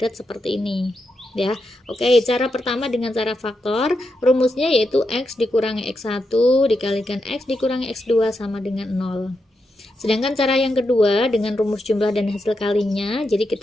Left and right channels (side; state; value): both; normal; correlation 0.85